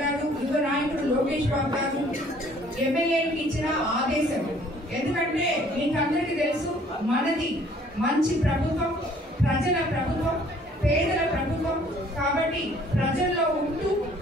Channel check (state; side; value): normal; both; correlation 0.58